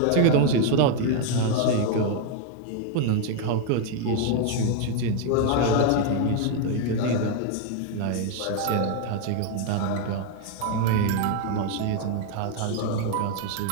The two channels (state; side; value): different; both; correlation 0.00